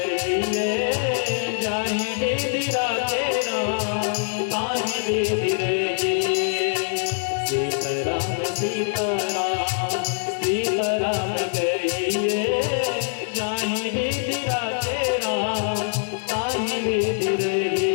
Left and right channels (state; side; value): silent; right; digital silence